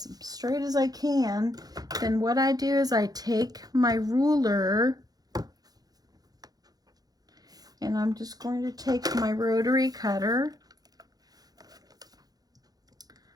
straight as I can, then what I do is I take my ruler and I'm just going to take my rotary cutter,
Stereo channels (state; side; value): late; left; 0.19 ms